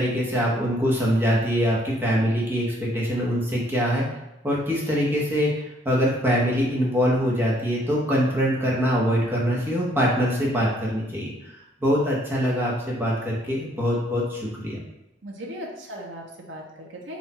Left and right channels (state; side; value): normal; both; correlation 0.65